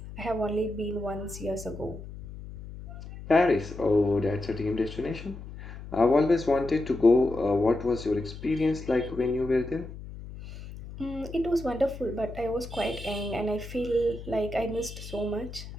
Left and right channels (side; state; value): left; noise; hum, 12 dB below the sound